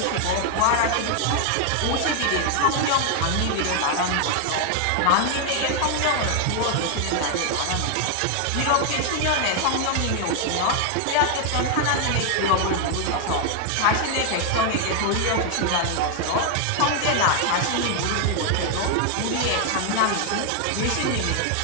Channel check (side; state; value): both; different; correlation 0.00